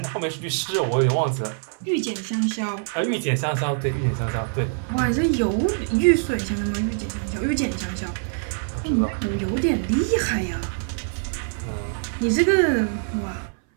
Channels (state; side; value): silent; left; 60 dB below the other